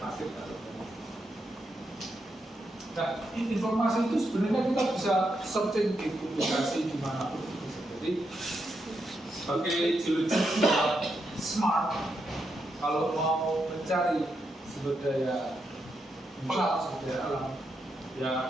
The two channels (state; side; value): normal; both; correlation 0.83